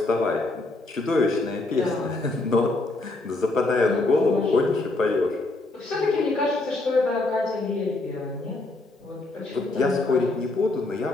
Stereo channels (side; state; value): right; quieter; 3.0 dB